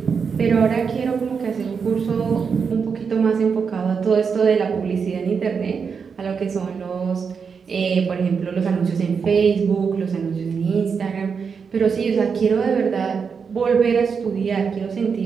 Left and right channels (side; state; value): left; quieter; 6.0 dB